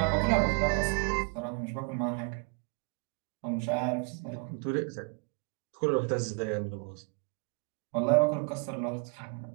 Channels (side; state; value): left; quieter; 35.9 dB